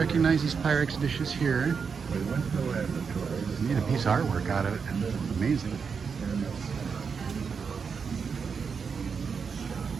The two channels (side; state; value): left; quieter; 5.9 dB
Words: these Pyrex dishes here. You need a piece of artwork out of it. Amazing.